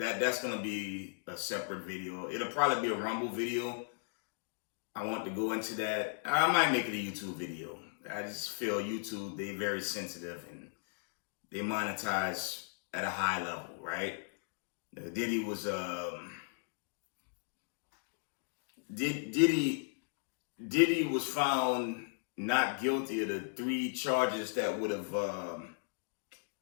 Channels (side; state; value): right; silent; digital silence